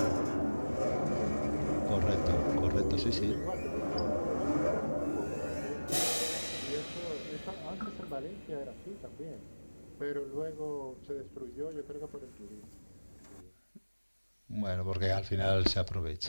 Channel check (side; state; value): both; inverted; correlation -1.00